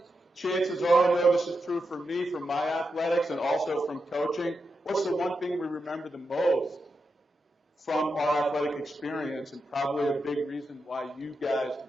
Chances are, I know this is true for me, from my athletics, and also from coaching. What's the one thing we remember the most from our athletic experience, and probably a big reason why you guys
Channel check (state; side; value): normal; both; correlation 0.87